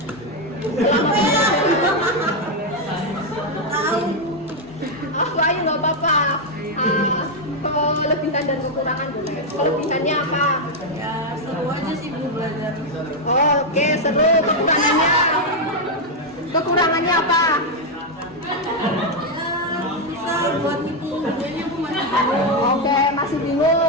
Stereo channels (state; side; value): normal; both; correlation 0.02